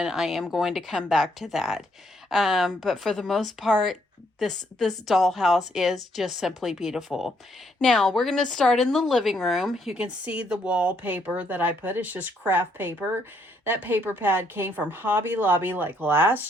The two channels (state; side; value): normal; both; correlation 0.71